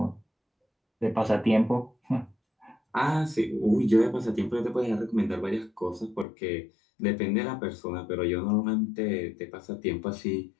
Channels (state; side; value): drops out; right; at 6.2 s